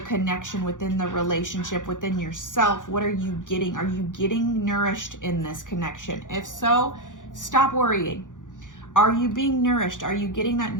connection, within the relationship, within yourself. What are you getting? Are you getting nourished in this connection? If so, stop worrying. Are you being nourished? Are you getting that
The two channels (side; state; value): right; late; 0.87 ms